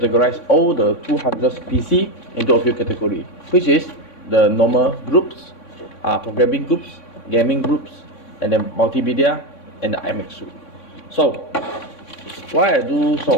all the 200 PC into a few categories, which is the normal groups, programming groups, gaming groups, and then multimedia, and the IMAX suite. So, why I do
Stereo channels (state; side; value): late; right; 3.6 ms